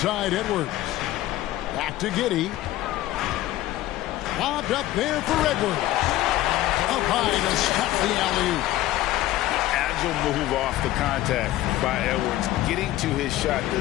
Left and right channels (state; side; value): quieter; right; 15.3 dB